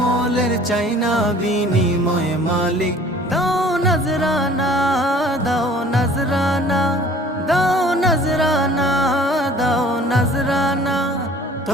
চাইনা বিনিময় মালিক। দাও নজরানা, দাও নজরানা, দাও নজরানা, দাও নজরানা।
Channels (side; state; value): both; normal; correlation 0.50